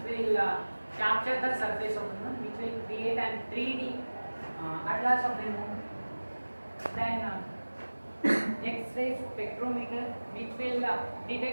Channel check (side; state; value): both; inverted; correlation -1.00